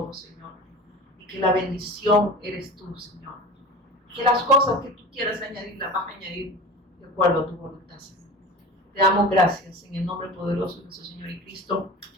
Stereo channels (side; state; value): both; normal; correlation 0.35